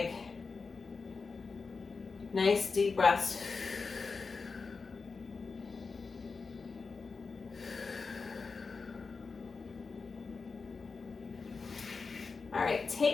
Nice deep breaths. All right,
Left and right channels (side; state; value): right; quieter; 4.6 dB